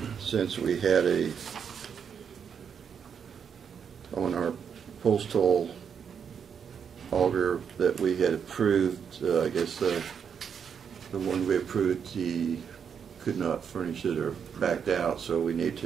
since we had on our postal auger that we had approved, I guess the one we approved, he could not furnish it or backed out, so we need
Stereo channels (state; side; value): quieter; left; 7.2 dB